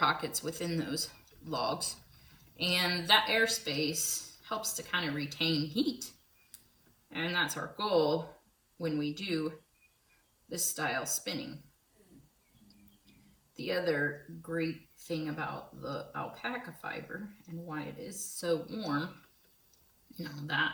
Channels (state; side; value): identical; both; correlation 1.00